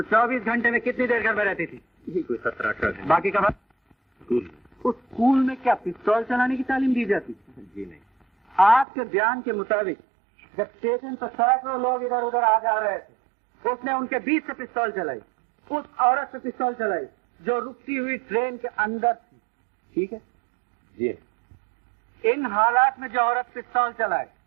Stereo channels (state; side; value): drops out; left; at 8.8 s